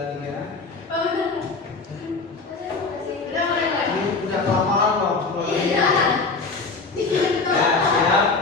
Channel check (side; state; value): right; quieter; 4.1 dB